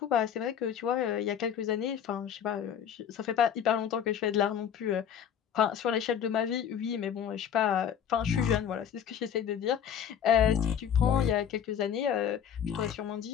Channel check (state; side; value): quieter; right; 8.7 dB